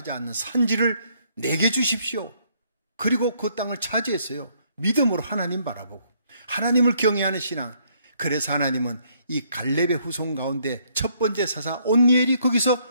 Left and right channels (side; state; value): both; inverted; correlation -0.68